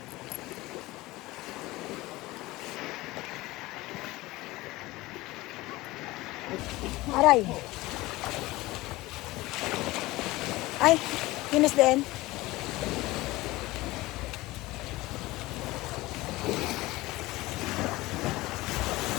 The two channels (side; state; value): right; quieter; 19.5 dB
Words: Aray! Ay, Yunus din.